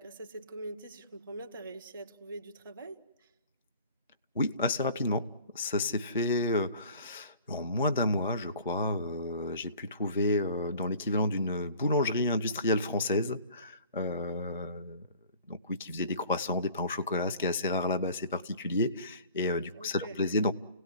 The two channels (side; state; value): both; inverted; correlation -0.47